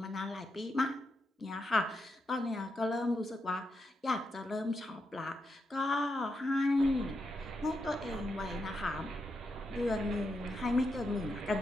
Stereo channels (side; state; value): both; normal; correlation 0.84